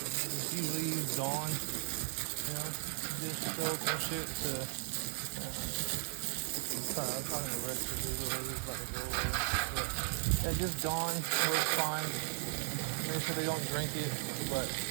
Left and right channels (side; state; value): left; silent; 53 dB below the other